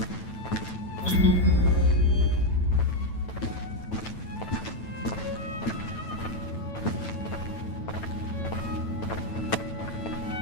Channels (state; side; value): late; right; 9.1 ms